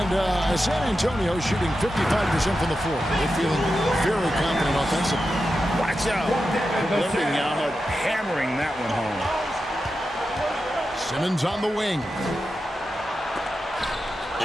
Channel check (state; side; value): normal; both; correlation 0.90